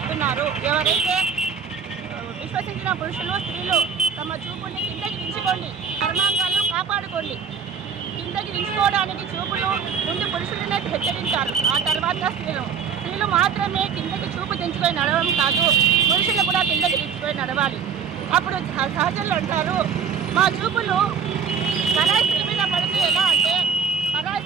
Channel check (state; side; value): quieter; left; 6.7 dB